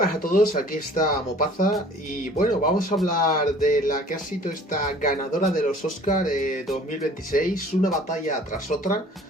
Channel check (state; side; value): normal; both; correlation 0.50